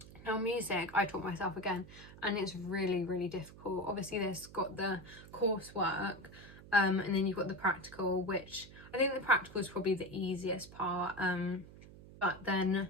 Now music, I taught myself again, and it's really, really difficult. Obviously this got the coursework, and then you've got the practical, which I think the practical is probably the easiest part, but then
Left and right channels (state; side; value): noise; right; hum, 18 dB below the sound